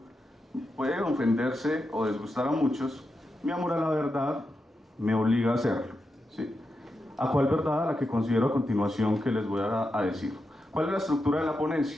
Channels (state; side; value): normal; both; correlation 0.87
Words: puede ofenderse o desgustar a muchos, mi amor a la verdad me obliga a hacerlo, ¿sí? ¿A cuál verdad? A la que considero a continuación que les voy a decir. ¿Cuál es la estructura de la ponencia?